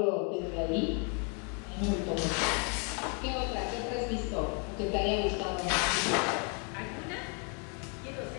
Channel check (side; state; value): right; quieter; 37.5 dB